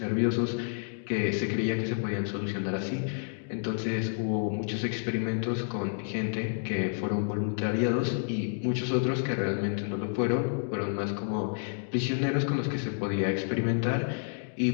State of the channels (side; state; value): right; silent; digital silence